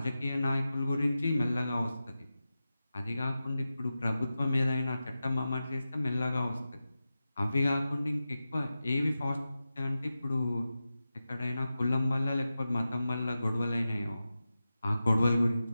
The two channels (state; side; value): inverted; both; correlation -0.93